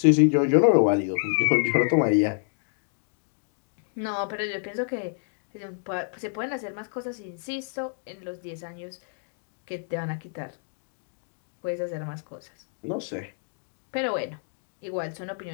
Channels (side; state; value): right; silent; digital silence